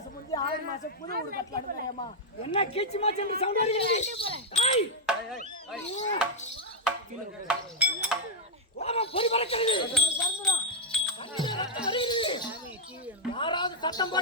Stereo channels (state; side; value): normal; both; correlation -0.01